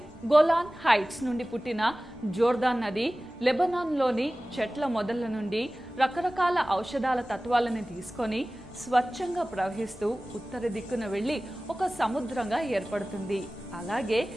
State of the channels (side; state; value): both; normal; correlation 0.97